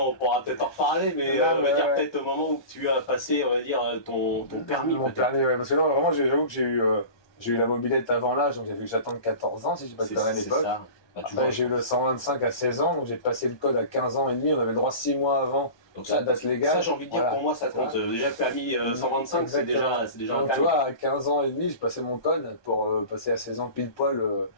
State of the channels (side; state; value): right; late; 1.2 ms